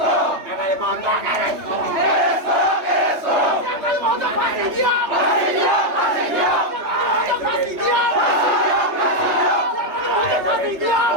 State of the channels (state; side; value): late; left; 3.3 ms